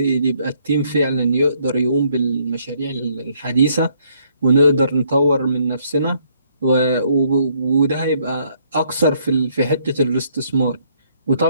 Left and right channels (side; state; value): both; inverted; correlation -0.68